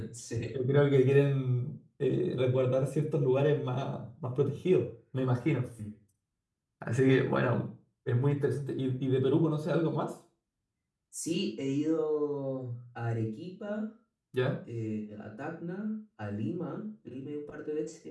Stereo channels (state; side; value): identical; both; correlation 1.00